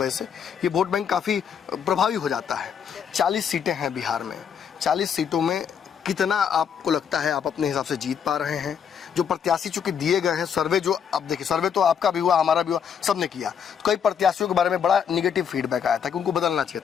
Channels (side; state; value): right; quieter; 7.6 dB